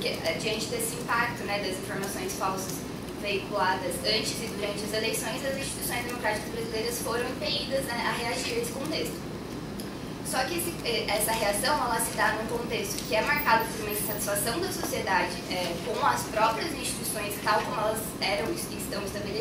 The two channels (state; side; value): identical; both; correlation 1.00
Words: diante desse impacto, né, das informações falsas veiculadas antes e durante as eleições, as instituições democráticas brasileiras foram impelidas, né, a reagir a esse contexto. Só que essa reação ela se dá num contexto que é marcado por uma insatisfação da sociedade com as próprias instituições tal como elas eram e estão